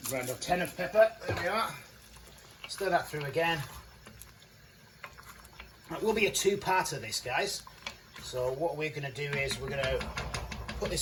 Grind or 10 of pepper, there we are. Stir that through again. It will be a two-parter this, guys. So what we're going to do is we're going to put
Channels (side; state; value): both; identical; correlation 1.00